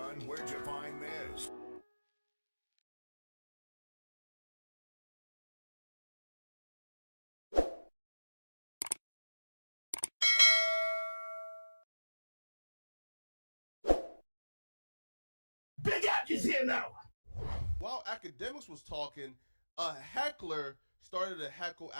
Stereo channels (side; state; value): both; inverted; correlation -1.00